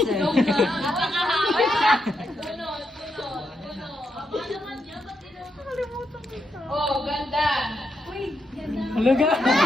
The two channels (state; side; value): normal; both; correlation 0.82